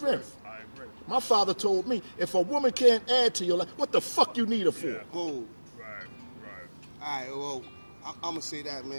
I agree. My father told me, if a woman can't add to your life, what the fuck you need her for? Yeah. Gold. Right. Right. All right, well, I'm going to say that,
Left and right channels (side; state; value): both; inverted; correlation -1.00